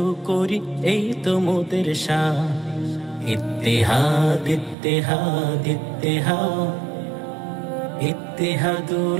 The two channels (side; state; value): left; drops out; at 4.8 s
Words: করি এই তো মোদের শান ইত্তেহাদ ইত্তেহাদ ইত্তেহাদ